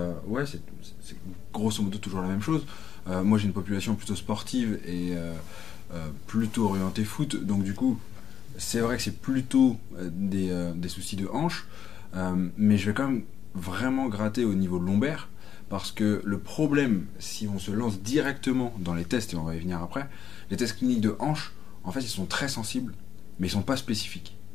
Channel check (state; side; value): quieter; right; 8.3 dB